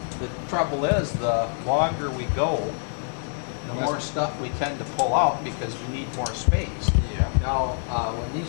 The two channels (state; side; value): silent; right; 56 dB below the other